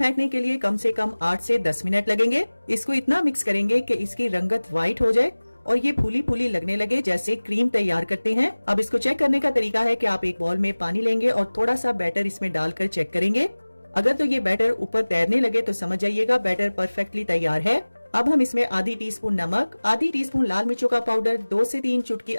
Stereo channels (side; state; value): both; inverted; correlation -1.00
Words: के लिए कम से कम 8 से 10 मिनट लगेंगे। इसको इतना मिक्स करेंगे कि इसकी रंगत व्हाइट हो जाए और ये फूली फूली लगने लगे जैसे क्रीम तैयार करते हैं। अब इसको चेक करने का तरीका है कि आप एक बाउल में पानी लेंगे और थोड़ा सा बैटर इसमें डालकर चेक करेंगे। अगर तो ये बैटर ऊपर तैरने लगे तो समझ जाइएगा बैटर परफेक्टली तैयार है। अब हम इसमें आधी टीस्पून नमक, आधी टीस्पून लाल मिर्चों का पाउडर, 2 से 3 चुटकी